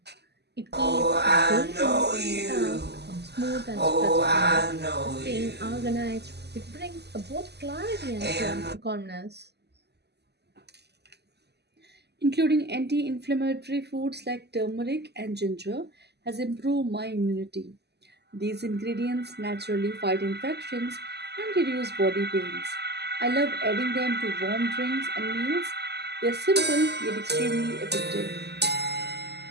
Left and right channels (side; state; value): left; late; 0.49 ms